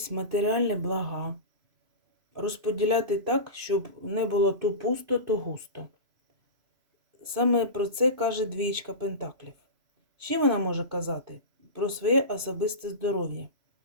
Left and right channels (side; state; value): left; late; 2.5 ms